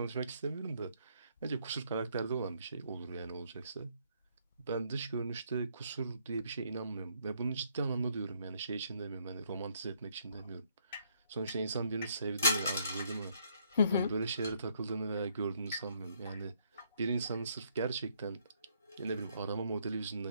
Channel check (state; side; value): inverted; both; correlation -0.69